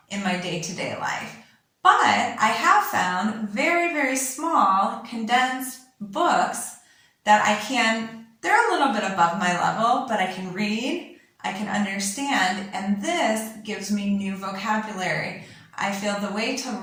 in my day-to-day life. But I have found very, very small, condensed books that they're a little bit above my level, but I can read, I can understand, and this gives me new vocabulary. I feel the way to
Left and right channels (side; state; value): both; identical; correlation 1.00